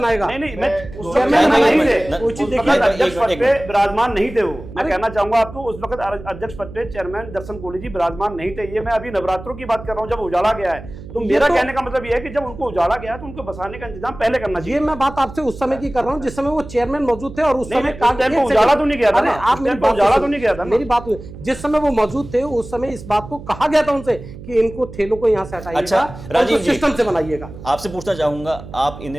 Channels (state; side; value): noise; right; hum, 14 dB below the sound